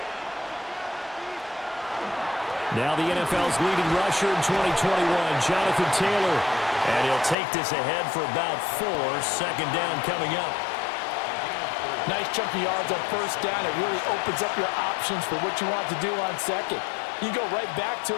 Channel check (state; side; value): drops out; right; at 7.4 s